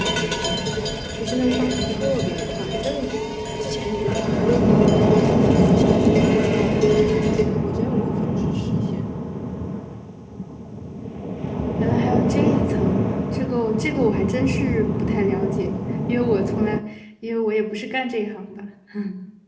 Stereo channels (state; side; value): identical; both; correlation 1.00